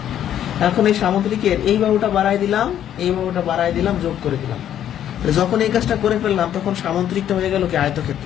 এখন এই সামান্তরিকের এই বাহুটা বাড়াই দিলাম, এই বাহুটা বাড়াই দিলাম, যোগ করে দিলাম। তাহলে যখন এই কাজটা করে ফেললাম তখন সামান্তরিকটা হয়ে গেল কি?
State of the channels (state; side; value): quieter; right; 10.6 dB